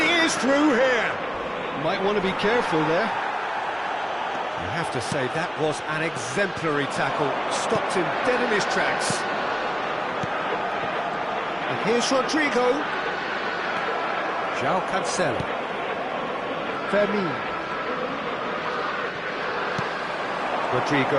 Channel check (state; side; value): identical; both; correlation 1.00